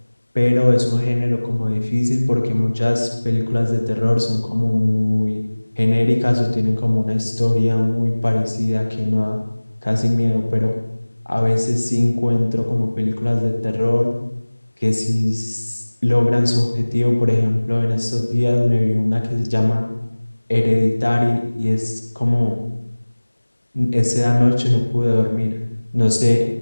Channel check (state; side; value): inverted; both; correlation -1.00